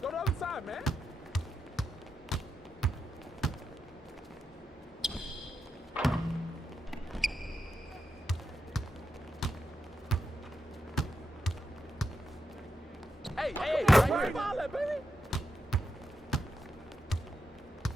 Go to the other side, man. Hey, right here. Ball it, baby.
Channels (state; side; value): normal; both; correlation 0.86